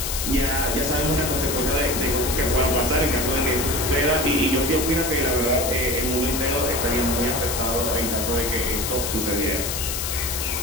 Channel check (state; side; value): noise; left; hiss, 3 dB below the sound